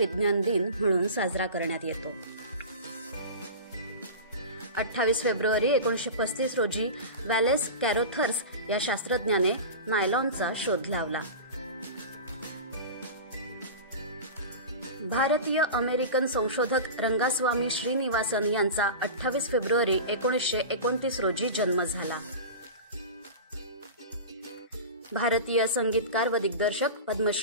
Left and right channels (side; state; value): both; inverted; correlation -0.30